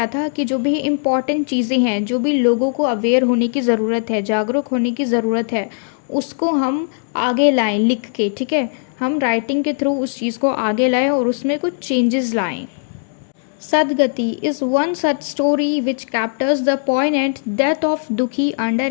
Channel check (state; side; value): silent; right; digital silence